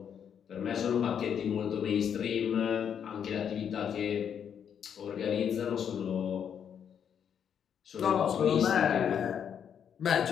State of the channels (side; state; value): right; quieter; 8.2 dB